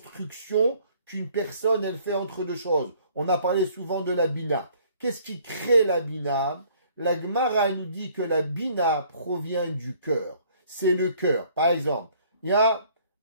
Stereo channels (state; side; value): inverted; both; correlation -0.59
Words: qu'une personne, elle fait entre deux choses. On a parlé souvent de la bina. Qu'est-ce qui crée la bina? La Gemara nous dit que la bina provient du cœur. C'est le cœur. Par exemple, il y a